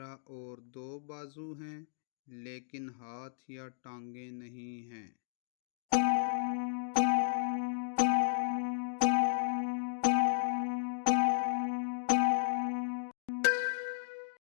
और दो बाजू हैं लेकिन हाथ या टांगे नहीं हैं?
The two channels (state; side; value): silent; right; digital silence